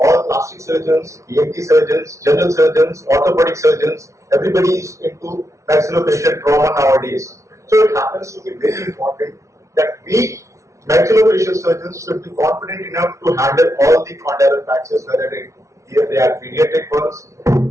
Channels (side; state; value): left; late; 0.14 ms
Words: plastic surgeons, ENT surgeons, general surgeons, orthopedic surgeons, everybody is into maxillofacial trauma nowadays. So it happens to be very important that we maxillofacial surgeons should be confident enough to handle all the condylar fractures, whether they are pediatric ones